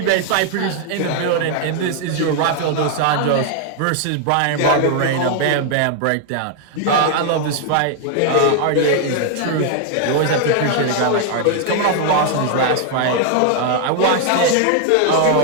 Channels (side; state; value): both; different; correlation 0.00